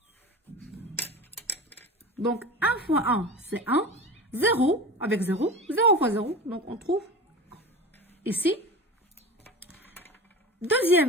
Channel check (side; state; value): both; normal; correlation 0.32